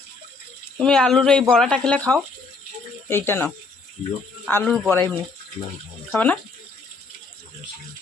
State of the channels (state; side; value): quieter; right; 4.1 dB